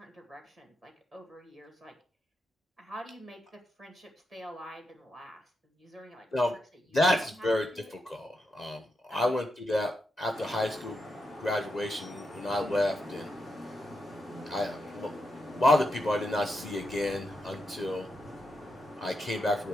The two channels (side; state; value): both; normal; correlation 0.84